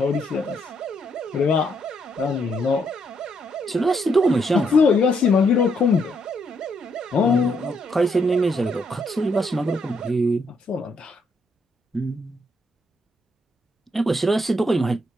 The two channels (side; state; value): both; normal; correlation 0.75